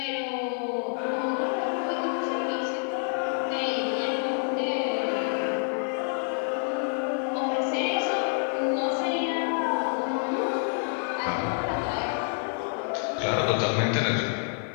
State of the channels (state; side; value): silent; right; 60 dB below the other